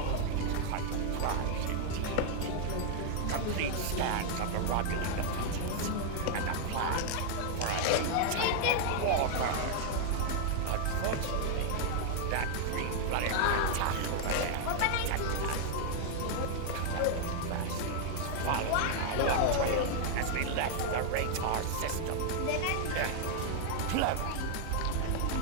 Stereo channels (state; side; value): different; both; correlation 0.00